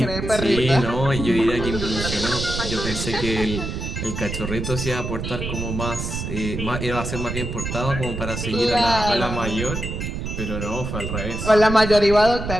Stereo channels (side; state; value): right; noise; rumble, 5 dB below the sound